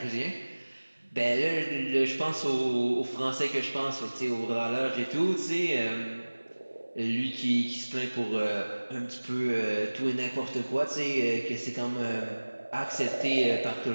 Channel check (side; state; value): both; inverted; correlation -1.00